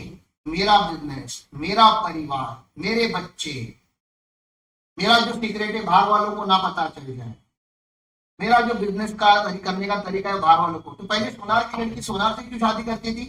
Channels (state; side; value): identical; both; correlation 1.00